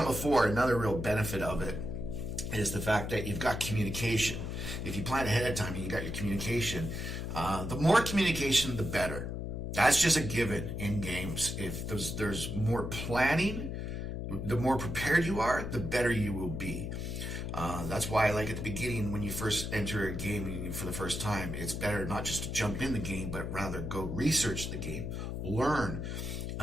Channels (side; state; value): left; noise; hum, 4 dB below the sound